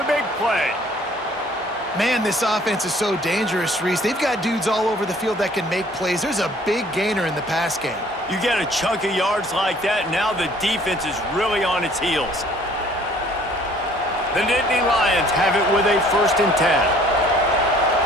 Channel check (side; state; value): both; normal; correlation 0.56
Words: big play. Man, this offense is so dangerous, Reese. They've got dudes all over the field that can make plays. There's a big gainer in the pass game. You get a chunk of yards like that, now the defense is really on its heels. The Nittany Lions have it with a 1st and 10.